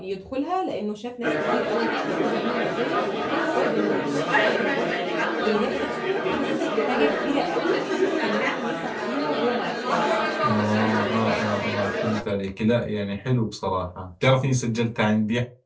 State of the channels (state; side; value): identical; both; correlation 1.00